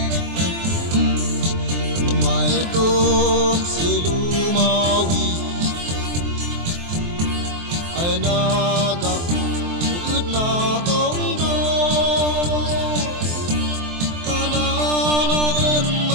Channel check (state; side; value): late; left; 23 ms